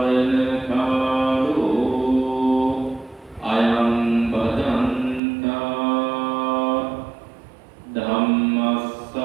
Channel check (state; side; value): drops out; left; at 5.2 s